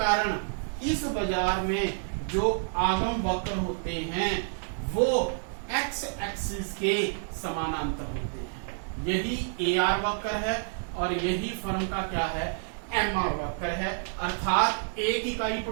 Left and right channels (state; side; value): silent; left; 59 dB below the other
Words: इस बाजार में जो आगम वक्र होते हैं वो एक्स एक्सिस के समानांतर होते हैं। यही एआर वक्र है और यही फर्म का क्या है? एमआर वक्र है। अर्थात एक इकाई